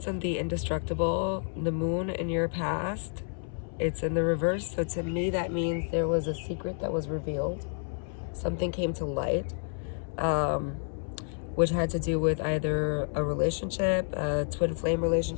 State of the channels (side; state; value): right; silent; 58 dB below the other